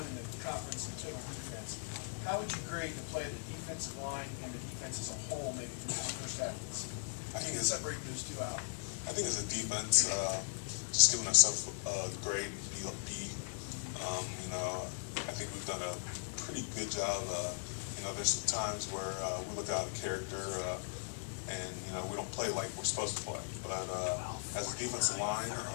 in the conference in total defense. How would you grade the play of the defensive line and the defense as a whole, maybe through this first half of the season? I think Separate those two out. I think as a defense, just giving ourselves a grade B. You know, I think we've done a pretty good job. You know, there's some times where we look out of character, and you know we don't play like we're supposed to play. But as a defensive line,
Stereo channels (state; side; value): silent; right; 52 dB below the other